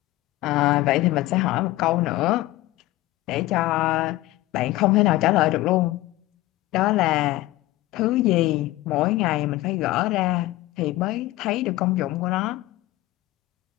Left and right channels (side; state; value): right; quieter; 17.5 dB